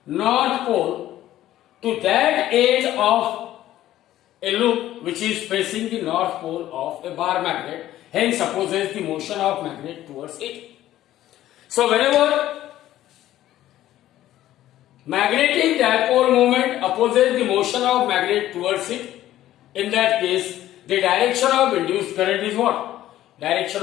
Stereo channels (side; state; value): right; quieter; 13.6 dB